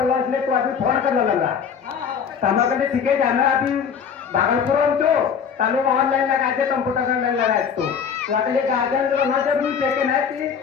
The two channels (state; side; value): quieter; right; 7.0 dB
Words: इसलिए तो अभी फोन करने लगा तमा कहते ठीक है जाना अभी भागलपुर में तो तालु ऑनलाइन लगाते कंप्यूटर ऑनलाइन लगाए तो अगले गार्डन जो ना जरूरी है कि नहीं कि